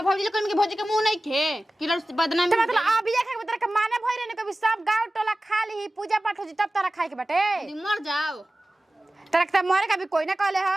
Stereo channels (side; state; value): both; normal; correlation 0.96